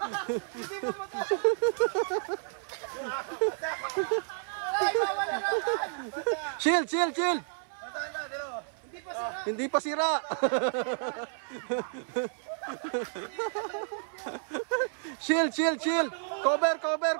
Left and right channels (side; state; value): left; silent; 57 dB below the other